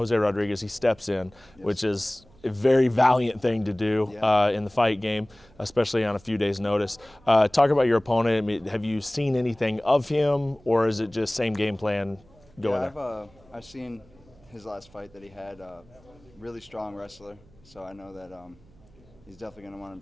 Rodriguez. He steps in, which is a very valiant thing to do in the fight game, especially on a few days' notice. Talk about your opponent. I mean, have you seen anything of him, or is it just same game plan going there? I've seen his last fight that he had. Really strong wrestler, so I know that he's definitely going to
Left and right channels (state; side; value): noise; right; hum, 27 dB below the sound